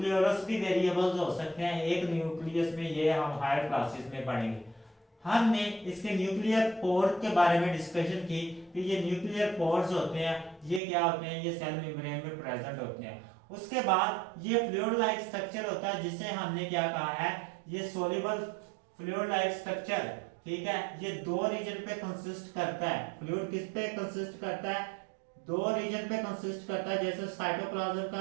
भी वेरिएबल्स हो सकते हैं। एक न्यूक्लियस में ये हम हायर क्लासेस में पढ़ेंगे। हमने इसके न्यूक्लियर पोर के बारे में डिस्कशन की कि ये न्यूक्लियर पोर्स होते हैं, ये क्या होते हैं, ये सेल मेम्ब्रेन में प्रेजेंट होते हैं। उसके बाद ये फ्लूइड लाइक स्ट्रक्चर होता है जिसे हमने क्या कहा है, ये सोल्यूबल फ्लूइड लाइक स्ट्रक्चर, ठीक है। ये दो रीजन पे कंसिस्ट करता है। फ्लूइड किस पे कंसिस्ट करता है, दो रीजन पे कंसिस्ट करता है। जैसे साइटोप्लाज्म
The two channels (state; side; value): drops out; left; at 10.8 s